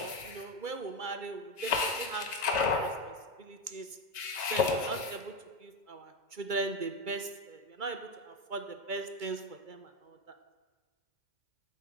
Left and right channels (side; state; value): left; late; 2.0 ms